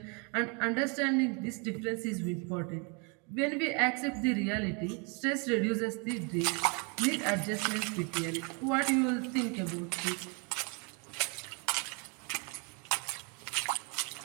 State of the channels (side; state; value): left; quieter; 34.1 dB